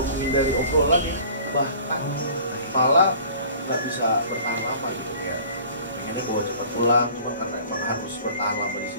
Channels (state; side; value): inverted; both; correlation -0.47